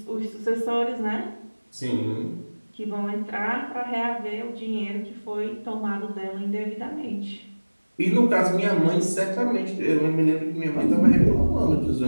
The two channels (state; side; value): inverted; both; correlation -1.00